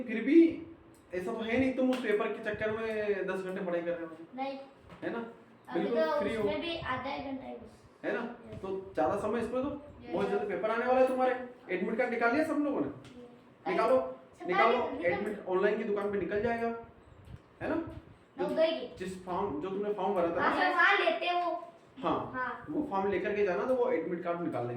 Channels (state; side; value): identical; both; correlation 1.00